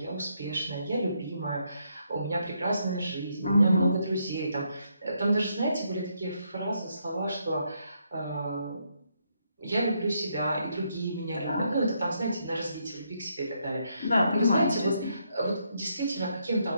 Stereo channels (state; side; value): inverted; both; correlation -0.76